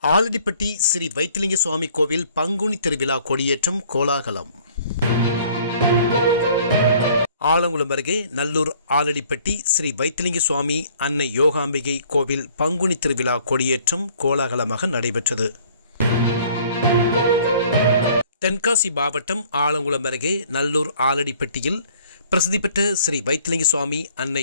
ஆலடிப்பட்டி ஸ்ரீ வைத்திலிங்க சுவாமி கோவில் பங்குனி திருவிழா கொடியேற்றம் கோலாகலம். ஆலங்குளம் அருகே நல்லூர் ஆலடிப்பட்டி ஸ்ரீ வைத்திலிங்க சுவாமி அன்னை யோகாம்பிகை கோவில் பங்குனி திருவிழா கொடியேற்றம் கோலாகலமாக நடைபெற்றது. தென்காசி மாவட்டம் ஆலங்குளம் அருகே நல்லூர் ஆலடிப்பட்டியில் பிரசித்தி பெற்ற ஸ்ரீ வைத்திலிங்க சுவாமி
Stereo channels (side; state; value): both; inverted; correlation -0.57